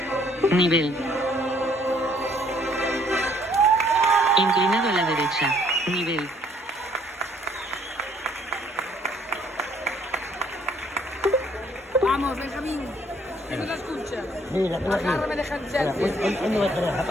Nivel. Inclinado a la derecha. Nivel. Vamos, Benjamín. Que no se escucha. Mira, Agárrame de handset. ¿Dónde va a tener la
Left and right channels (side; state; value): both; normal; correlation 0.63